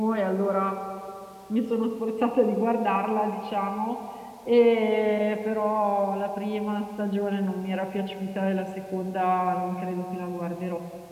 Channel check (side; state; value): both; identical; correlation 1.00